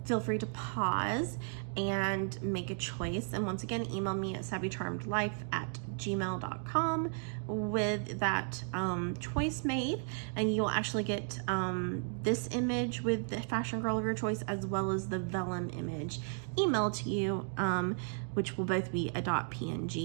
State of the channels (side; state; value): left; silent; 55 dB below the other